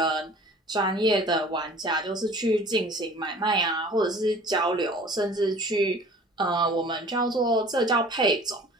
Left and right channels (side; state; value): both; normal; correlation 0.47